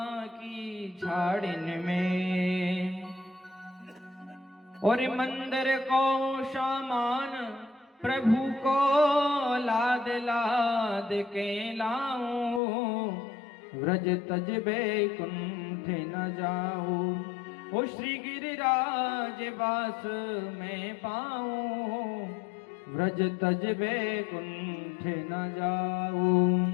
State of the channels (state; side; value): drops out; right; at 12.6 s